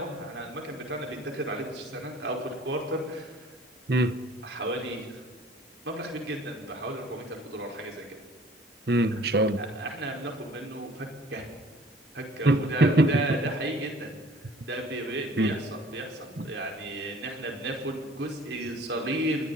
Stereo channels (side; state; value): both; normal; correlation 0.51